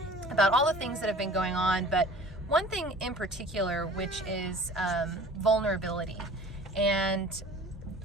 about all the things that have been going on, but one thing in particular, which is vulnerability. And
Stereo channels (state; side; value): normal; both; correlation 0.45